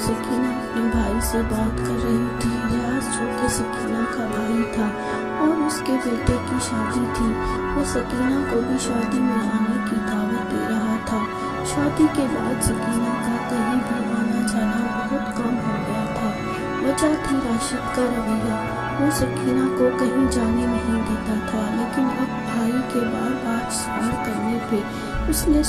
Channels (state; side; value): identical; both; correlation 1.00